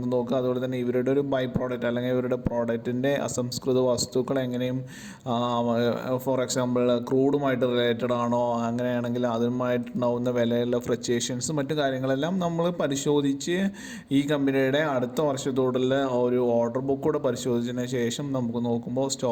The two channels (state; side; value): identical; both; correlation 1.00